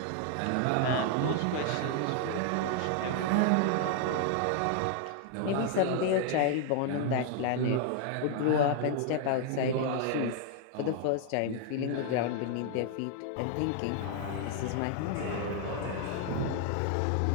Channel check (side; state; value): both; different; correlation 0.00